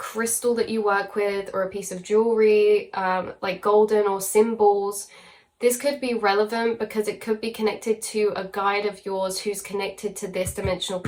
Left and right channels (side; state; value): both; identical; correlation 1.00